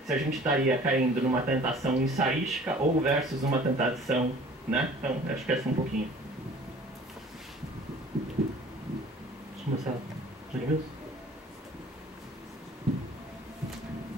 se a gente estaria caindo numa tentação ensaística ou versus uma tentação, né? Então, acho que essa um pouquinho. Vamos começar. Edmilson?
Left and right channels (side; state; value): both; normal; correlation 0.49